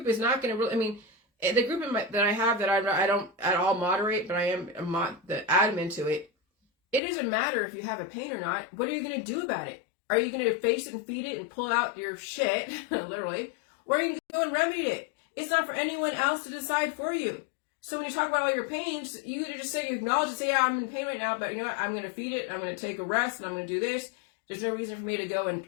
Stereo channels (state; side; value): drops out; right; at 7.0 s